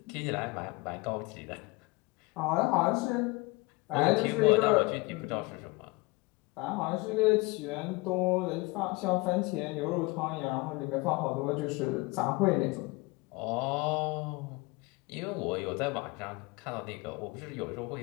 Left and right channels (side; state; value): right; quieter; 24.6 dB